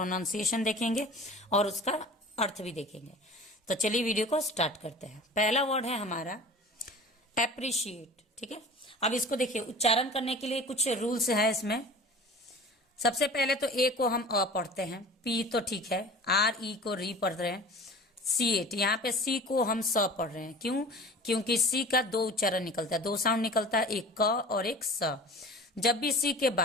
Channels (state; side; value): normal; both; correlation 0.40